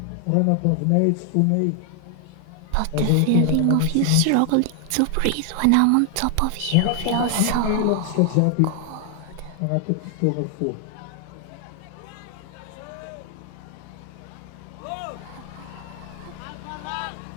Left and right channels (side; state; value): both; different; correlation 0.00